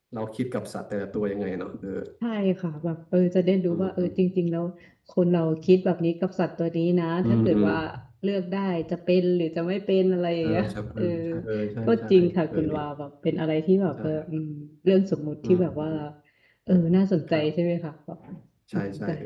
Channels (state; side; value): identical; both; correlation 1.00